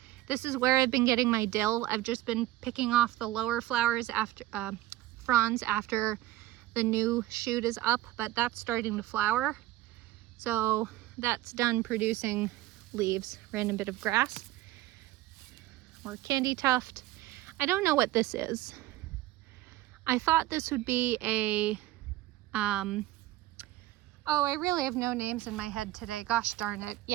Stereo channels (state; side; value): quieter; left; 16.2 dB